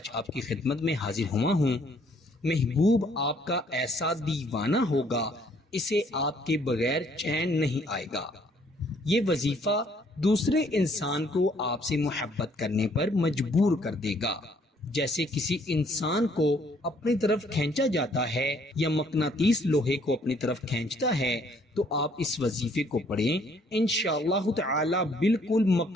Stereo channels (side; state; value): both; normal; correlation 0.64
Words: آپ کی خدمت میں حاضر ہوا ہوں۔ محبوب آپ کا ایسا دیوانہ ہوگا، اسے آپ کے بغیر چین نہیں آئے گا۔ یہ وظیفہ دوسرے انسان کو آپ سے محبت کرنے پر مجبور کر دے گا۔ جیسے کسی انسان کو اپنی طرف کھینچا جاتا ہے یا مقناطیس لوہے کو اپنی طرف کھینچتا ہے، تو آپ اس وظیفے کو پڑھیں، انشاءاللہ تعالی بالکل